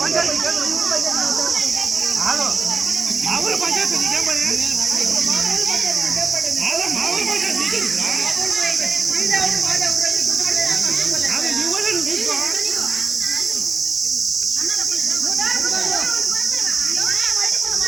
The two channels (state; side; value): quieter; left; 4.6 dB